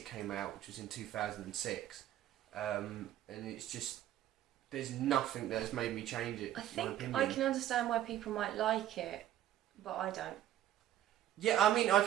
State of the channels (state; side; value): quieter; left; 12.5 dB